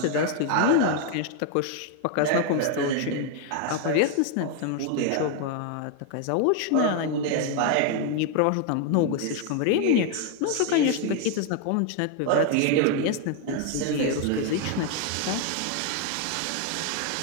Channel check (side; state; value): both; different; correlation 0.01